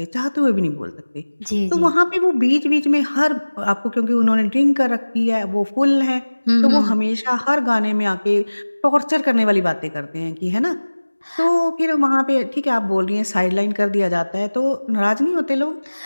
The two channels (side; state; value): both; inverted; correlation -1.00